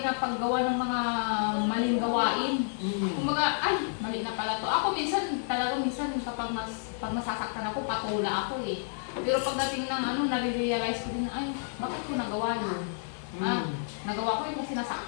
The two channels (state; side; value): silent; right; digital silence